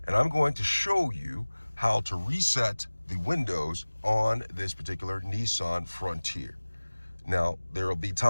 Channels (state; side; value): inverted; both; correlation -1.00